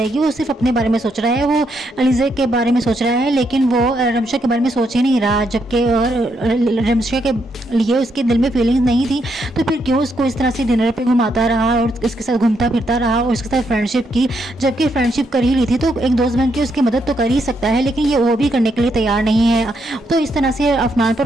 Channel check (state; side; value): normal; both; correlation 0.78